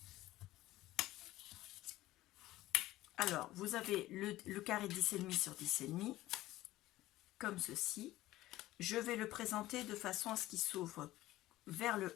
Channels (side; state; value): right; quieter; 16.3 dB